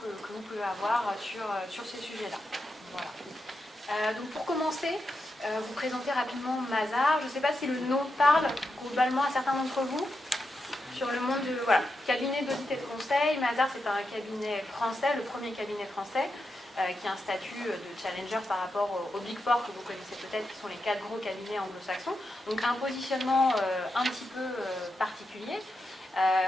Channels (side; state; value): both; normal; correlation 0.87